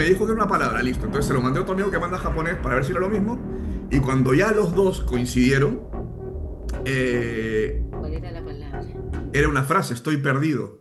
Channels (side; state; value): both; identical; correlation 1.00